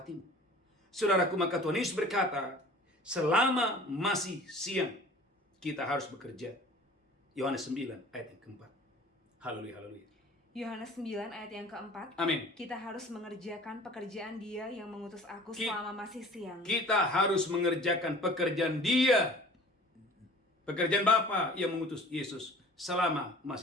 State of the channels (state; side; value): normal; both; correlation 0.45